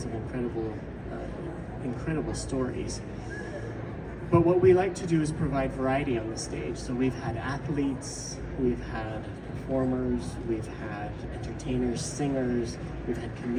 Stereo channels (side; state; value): both; identical; correlation 1.00